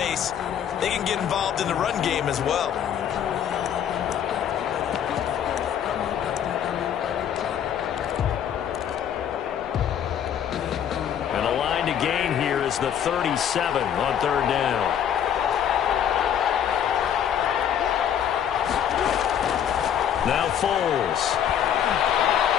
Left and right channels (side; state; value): right; quieter; 9.3 dB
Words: They can get involved in the run game as well. And the line to gain here is the 37 on 3rd down. Now Foles.